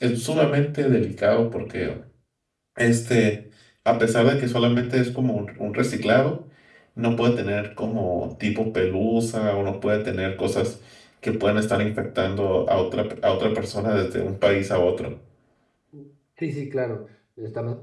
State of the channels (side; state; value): both; identical; correlation 1.00